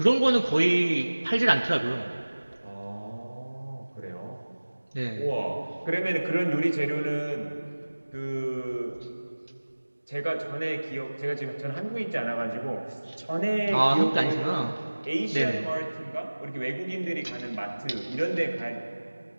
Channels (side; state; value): both; inverted; correlation -1.00